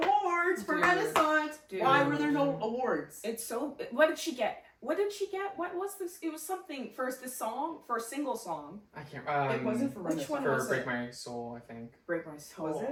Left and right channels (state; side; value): identical; both; correlation 1.00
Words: for Dude. Renaissance? Dude. Why were there no awards? It's so, what did she get? What did she get? What was this? It was something for this song, for a single song. I can't. It wasn't for Which Renaissance. one for was Break it? My Soul, I think. Break My Soul. Was